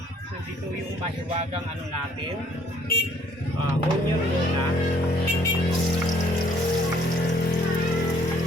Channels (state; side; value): normal; both; correlation 0.61